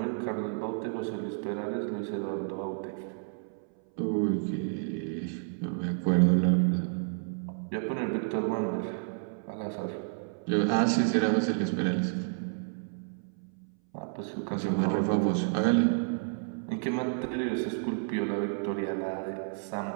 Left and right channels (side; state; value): left; silent; 57 dB below the other